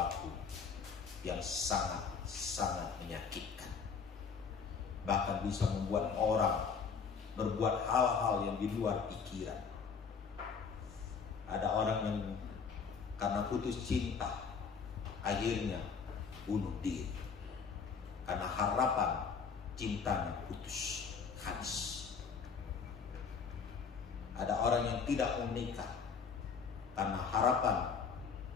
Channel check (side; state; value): right; quieter; 5.9 dB